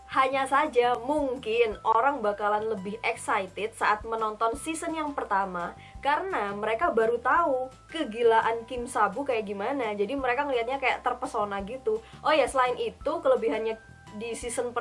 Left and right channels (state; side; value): identical; both; correlation 1.00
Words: Hanya saja mungkin orang bakalan lebih excited saat menonton season yang pertama karena mereka baru tahu kegilaan Kim Sa-bu kayak gimana. Jadi mereka ngelihatnya kayak terpesona gitu. Oh ya, selain itu kelebihannya di season